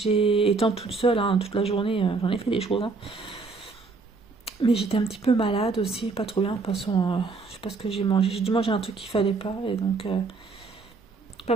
Étant toute seule, hein, toute la journée, j'en ai fait des choses. Hein. Mais j'étais un petit peu malade aussi, pas trop bien. De toute façon, je sais pas ce que j'ai mangé. J'ai dû manger un truc qu'il fallait pas. Et donc, pas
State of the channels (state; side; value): quieter; left; 4.1 dB